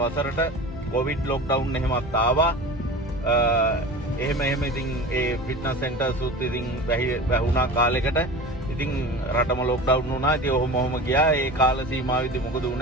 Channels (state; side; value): normal; both; correlation 0.34